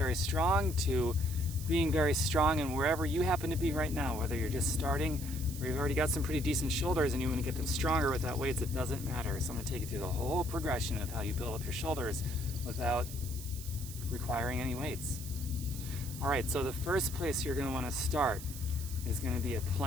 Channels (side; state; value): right; noise; hiss, 12 dB below the sound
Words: strong to being very strong, and wherever you happen to be right now, whether you're just starting or you've already got some pretty decent shoulders and you want to get them stronger without weights, it doesn't matter. So I'm going to take you through the whole progression of how you build up your shoulders without requiring any weights. All right, so the first place you're going to want to start is going to be a